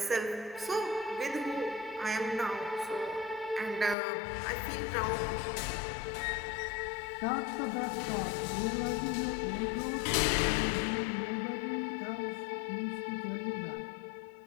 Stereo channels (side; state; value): right; drops out; at 4.0 s